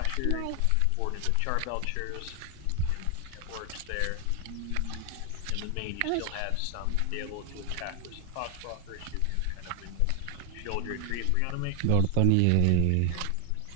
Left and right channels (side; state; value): both; different; correlation 0.00